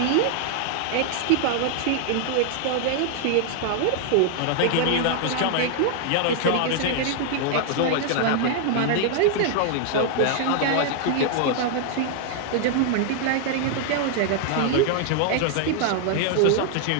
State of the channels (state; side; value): different; both; correlation 0.00